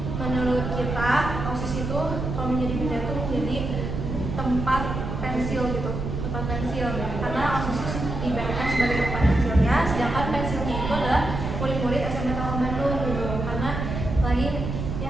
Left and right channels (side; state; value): right; noise; rumble, 4 dB below the sound